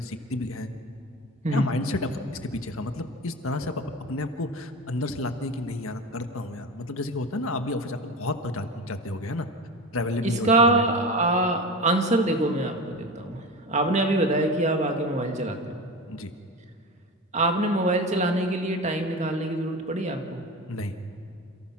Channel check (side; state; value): both; normal; correlation 0.27